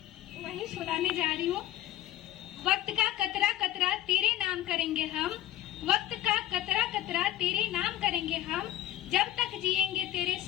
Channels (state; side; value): quieter; right; 13.7 dB